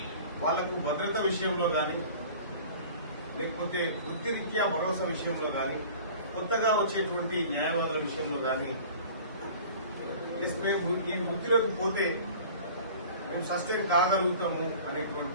వాళ్లకు భద్రత విషయంలో కానీ, లేకపోతే వృత్తిరీత్యా భరోసా విషయంలో కానీ, కొత్తగా వచ్చేటువంటి న్యాయవాదుల విషయంలో కానీ, మేము ఈ వృత్తిలోకి పోతే మేము సస్టైన్ కాగలుగుతాము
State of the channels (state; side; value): inverted; both; correlation -0.44